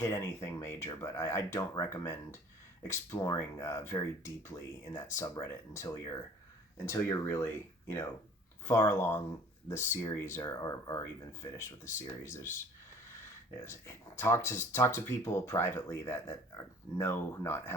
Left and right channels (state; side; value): normal; both; correlation 0.49